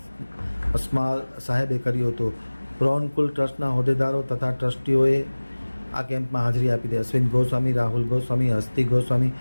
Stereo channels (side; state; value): both; inverted; correlation -1.00